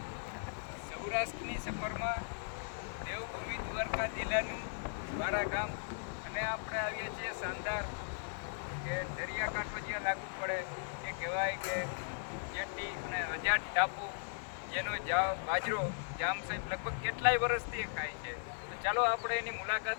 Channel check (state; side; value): silent; right; digital silence